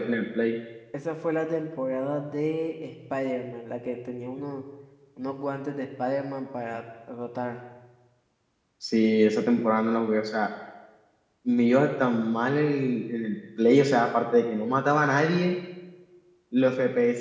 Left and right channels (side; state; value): both; identical; correlation 1.00